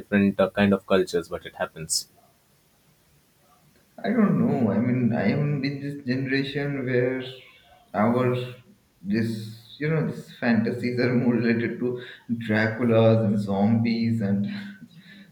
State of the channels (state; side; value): identical; both; correlation 1.00